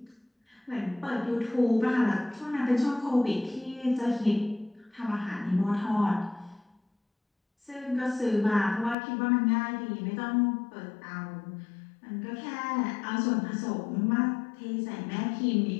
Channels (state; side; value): drops out; right; at 9.0 s